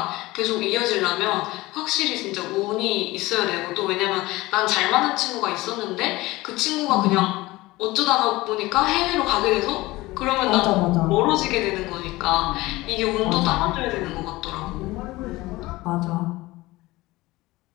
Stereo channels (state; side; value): quieter; right; 19.7 dB